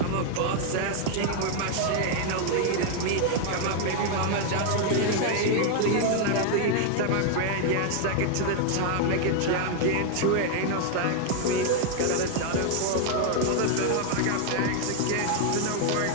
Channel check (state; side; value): different; both; correlation 0.00